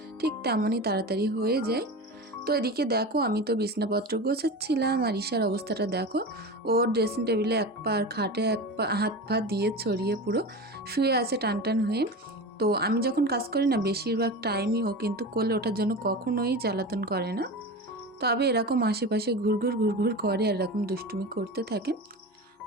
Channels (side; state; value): both; normal; correlation 0.28